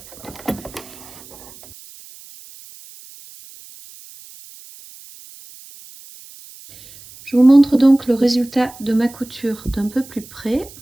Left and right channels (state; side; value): noise; right; hiss, 20 dB below the sound